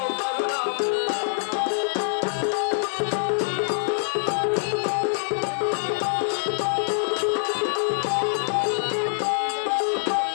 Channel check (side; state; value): right; silent; digital silence